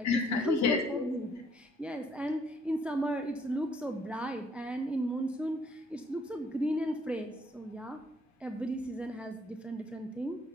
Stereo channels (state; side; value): normal; both; correlation 0.65